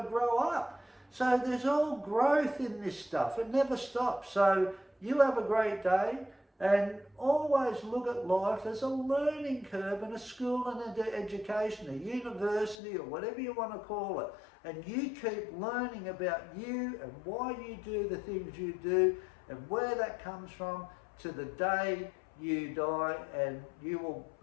to grow up. So there's all growth in this stuff. It never stops. So you have a great day, and always look at life as a learning curve and a school and an education, a university or whatever you want to call it. And you keep learning about you and why you do the things you do and where that comes from to the day you die, and you will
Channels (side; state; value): right; drops out; at 12.8 s